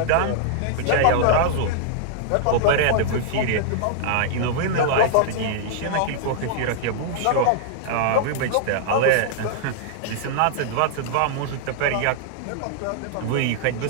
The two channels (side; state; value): both; different; correlation -0.01